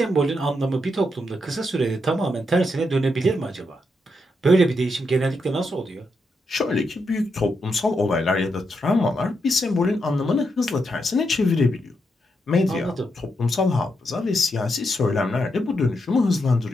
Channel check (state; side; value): normal; both; correlation 0.82